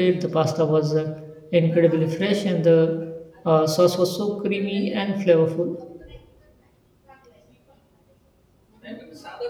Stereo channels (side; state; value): both; identical; correlation 1.00